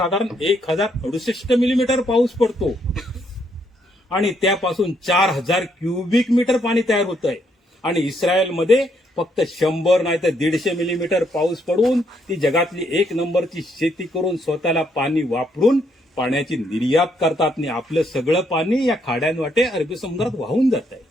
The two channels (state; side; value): normal; both; correlation 0.73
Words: 1068 मिलीमीटर पाऊस पडतो आणि त्यापासून 4000 क्युबिक मीटर पाणी तयार होत आहे. आणि इस्रायलमध्ये फक्त 100 नाही तर 150 मिलीमीटर पाऊस पडून ती जगातली 1 नंबरची शेती करून स्वतःला पाणी वापरून पाण्याची निर्यात करतात. आणि आपलं सगळं पाणी या खाड्यांवाटे अरबी समुद्रात वाहून जात आहे.